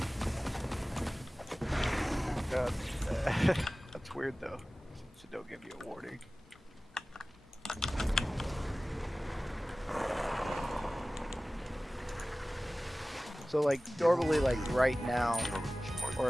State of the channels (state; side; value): normal; both; correlation 0.97